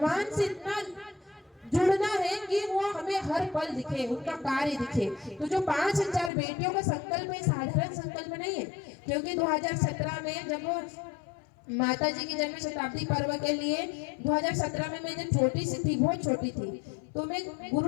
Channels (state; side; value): drops out; right; at 6.3 s